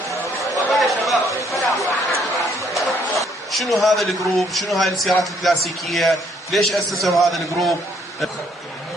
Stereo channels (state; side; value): normal; both; correlation 0.67